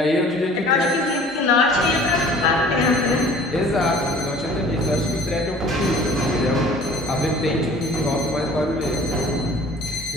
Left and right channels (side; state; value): both; normal; correlation 0.49